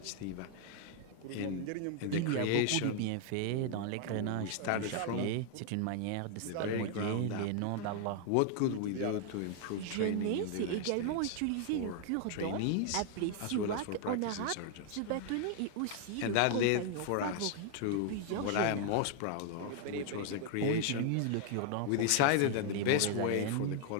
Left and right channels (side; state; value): both; different; correlation 0.00